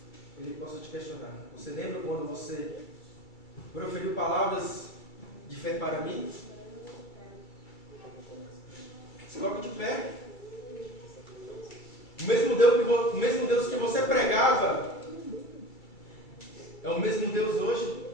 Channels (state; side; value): late; right; 2.3 ms